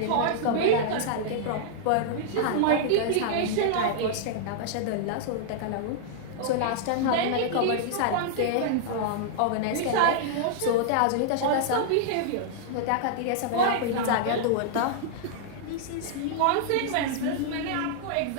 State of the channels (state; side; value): different; both; correlation -0.01